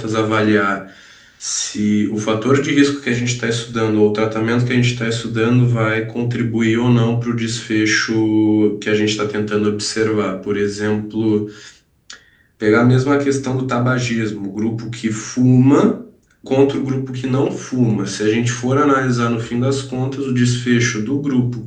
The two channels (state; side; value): identical; both; correlation 1.00